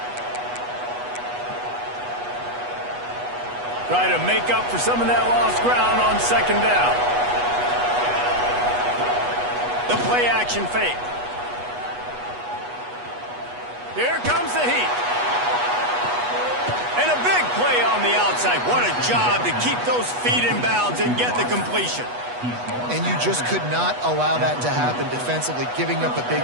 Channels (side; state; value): left; late; 8.2 ms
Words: Try to make up for some of that lost ground on second down. The play action fake. Here comes the heat. And a big play on the outside. What a job to keep those feet in bounds and get the completion. And you just could not allow that to happen defensively, giving up a big